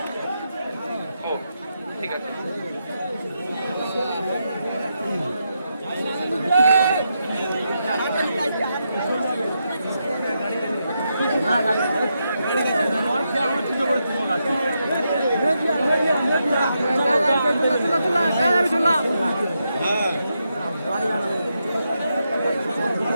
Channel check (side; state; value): both; inverted; correlation -0.84